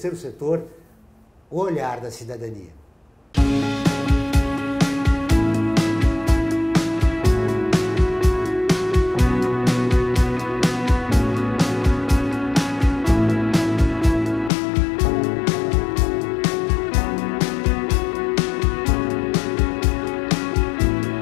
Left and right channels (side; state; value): right; drops out; at 14.5 s